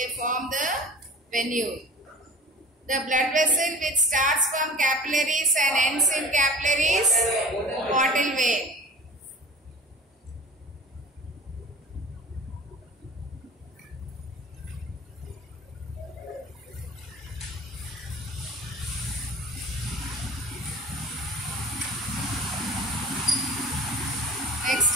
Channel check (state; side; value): normal; both; correlation 0.39